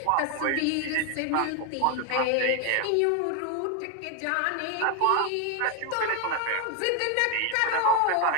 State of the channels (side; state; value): both; different; correlation 0.01